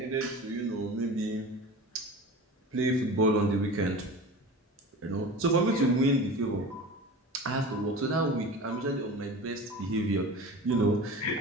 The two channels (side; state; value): both; normal; correlation 0.34